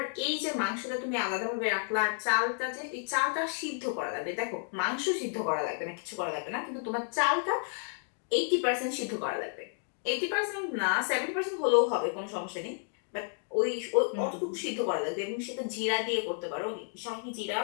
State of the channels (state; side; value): silent; right; 57 dB below the other